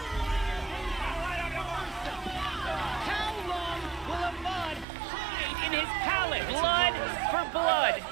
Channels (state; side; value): drops out; left; at 4.9 s